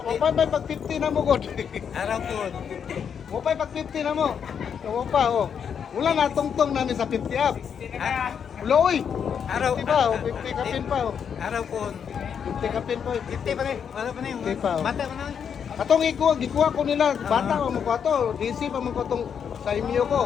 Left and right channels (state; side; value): quieter; right; 7.5 dB